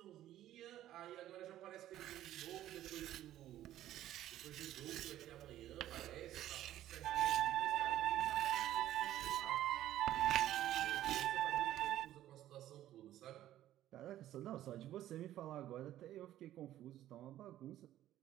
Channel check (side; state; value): left; quieter; 13.1 dB